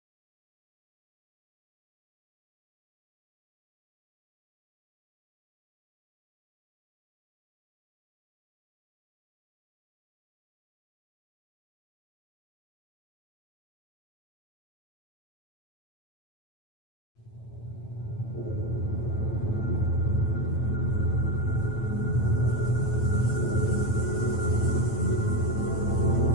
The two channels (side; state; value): right; late; 9.0 ms